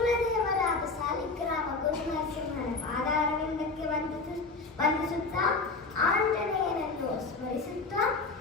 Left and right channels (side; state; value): right; quieter; 3.9 dB